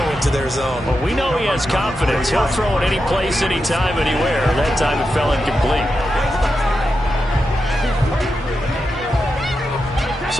into their zone. Well, we know he has confidence. He'll throw it any place, anytime, anywhere. That time it fell incomplete.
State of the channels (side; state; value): both; normal; correlation 0.88